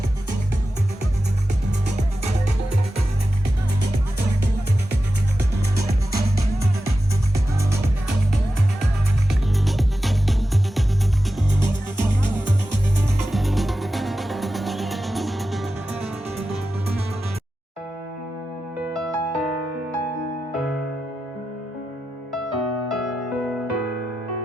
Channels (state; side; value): normal; both; correlation 0.92